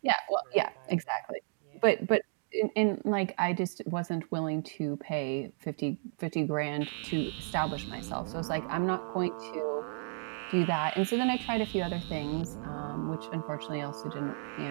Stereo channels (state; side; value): silent; left; digital silence